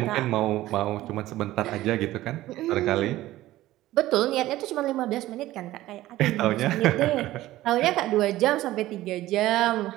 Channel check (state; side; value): quieter; left; 15.8 dB